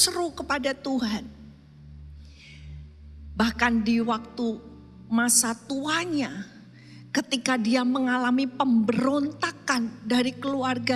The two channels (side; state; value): both; identical; correlation 1.00